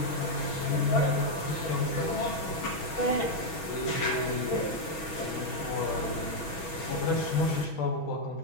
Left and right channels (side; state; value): right; late; 6.2 ms